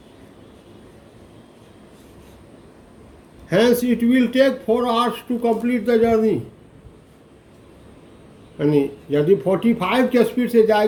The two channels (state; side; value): identical; both; correlation 1.00